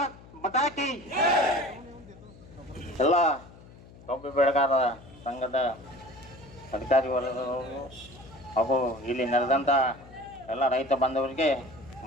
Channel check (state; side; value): noise; left; hum, 21 dB below the sound